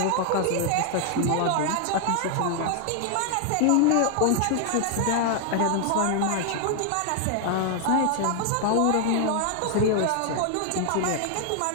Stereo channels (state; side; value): different; both; correlation 0.00